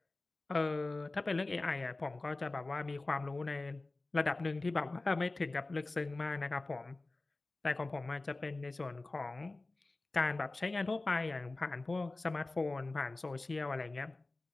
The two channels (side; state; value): right; quieter; 3.1 dB